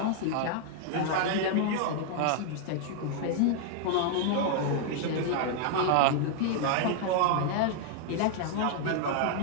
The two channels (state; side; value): different; both; correlation 0.00